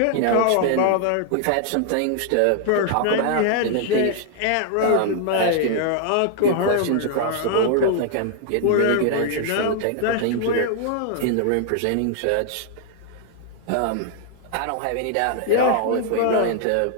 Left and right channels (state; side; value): different; both; correlation 0.00